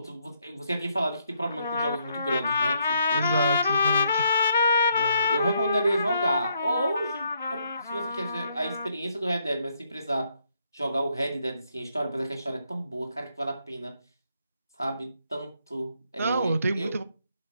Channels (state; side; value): inverted; both; correlation -0.74